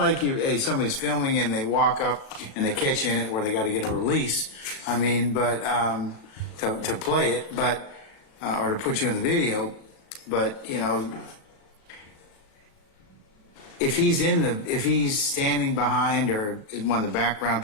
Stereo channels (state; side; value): late; right; 37 ms